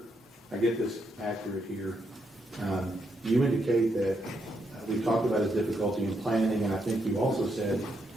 I get this accurate here. You indicate that we talked about his difficulty in planning, and I think you also said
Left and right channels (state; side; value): normal; both; correlation 0.79